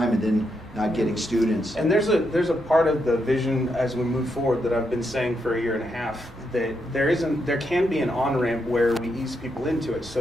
and then not getting students. And there's a part of the vision as we move forward that I've been saying for a year and a half, that there can be an on-ramp where we ease people into it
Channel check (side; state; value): both; normal; correlation 0.81